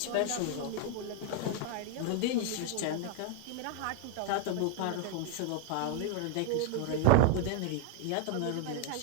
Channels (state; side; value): different; both; correlation 0.00